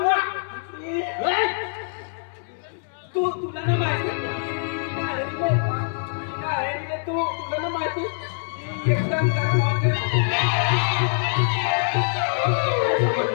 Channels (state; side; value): silent; right; 63 dB below the other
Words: तू तुला ना माहिती तू तुला ना माहिती एकदम गरम होते